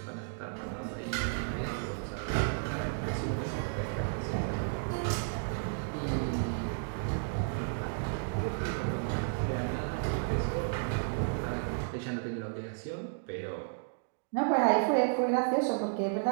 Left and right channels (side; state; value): left; silent; digital silence